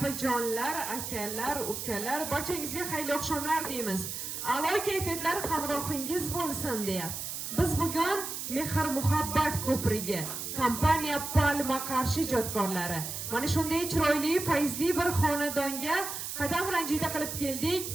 akalar, ukalar, barchangizga xayrli oqshomlar deymiz. A'lo kayfiyatlar hamrohingiz bo'lsin deya. Biz bugun Mehr muhabbat ko'prigi kompaniya Palma Qarshi ijodkorlari mana shunday chiroyli, fayzli bir xonadonga qadam ranjida qilib keldik.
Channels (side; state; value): right; noise; hiss, 6 dB below the sound